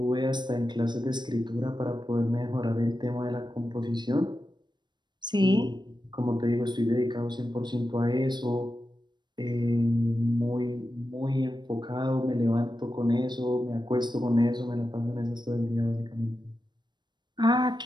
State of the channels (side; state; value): left; late; 0.22 ms